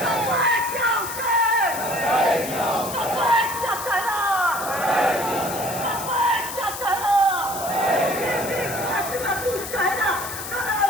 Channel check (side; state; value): left; noise; hiss, 8 dB below the sound